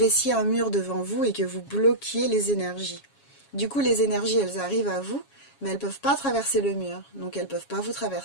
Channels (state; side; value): late; right; 7.3 ms